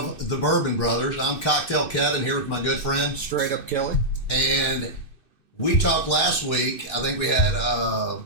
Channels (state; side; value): late; right; 2.6 ms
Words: the Bourbon Brothers. I'm Cocktail Kevin here with my good friend Straight Up Kelly. and we talked last week. I think we had